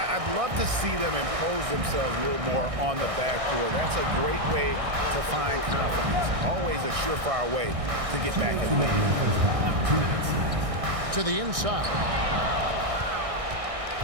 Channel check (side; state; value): left; late; 1.6 ms